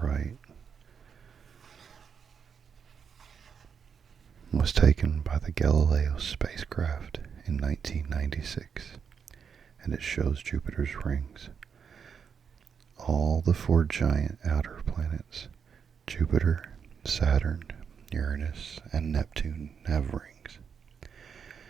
right was taken by the Galileo spacecraft in 1996, and it shows Jupiter's rings. All the 4 giant outer planets, Jupiter, Saturn, Uranus, and Neptune, have rings.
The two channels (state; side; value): quieter; left; 6.8 dB